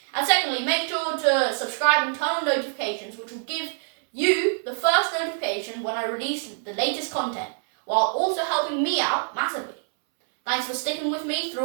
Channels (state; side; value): silent; left; 62 dB below the other